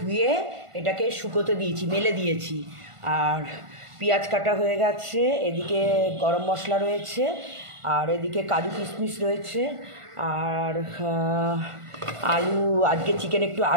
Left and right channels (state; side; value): late; left; 1.5 ms